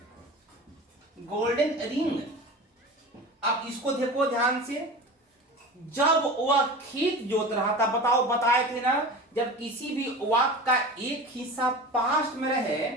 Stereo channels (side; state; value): both; normal; correlation 0.33